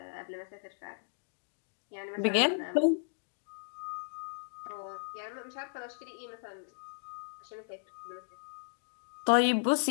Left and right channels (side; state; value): right; silent; digital silence